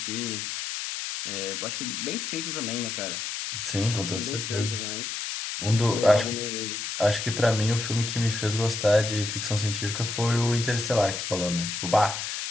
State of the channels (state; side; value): noise; left; hiss, 4 dB below the sound